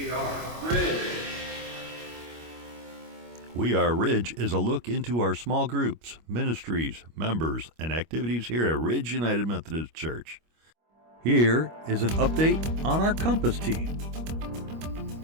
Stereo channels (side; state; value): left; late; 25 ms